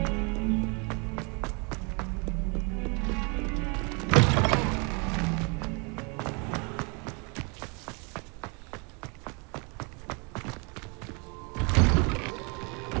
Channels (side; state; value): left; quieter; 32.9 dB